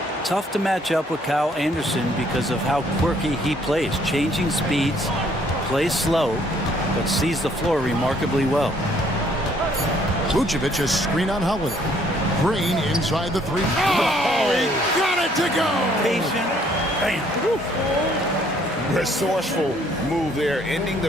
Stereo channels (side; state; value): both; normal; correlation 0.64